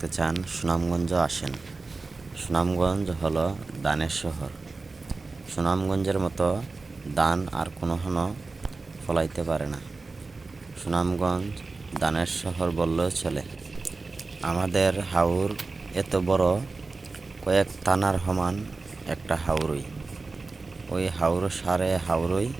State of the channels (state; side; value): quieter; left; 3.8 dB